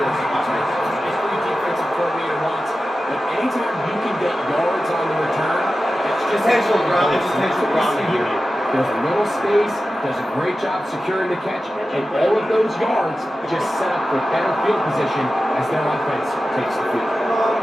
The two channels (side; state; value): both; normal; correlation 0.93